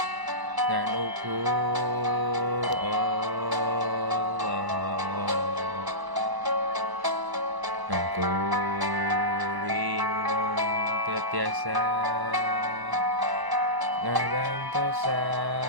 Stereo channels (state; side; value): late; left; 1.0 ms